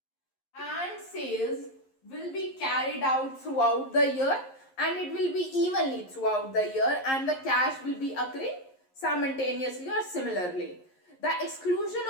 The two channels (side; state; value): right; late; 11 ms